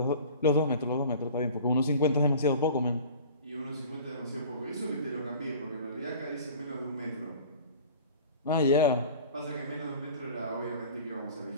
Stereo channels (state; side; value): inverted; both; correlation -0.42